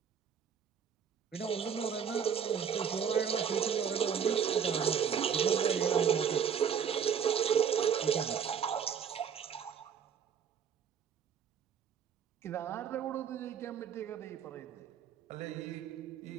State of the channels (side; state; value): left; quieter; 7.5 dB